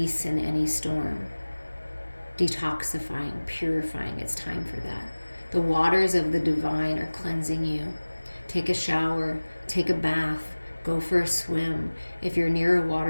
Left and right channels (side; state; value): both; inverted; correlation -1.00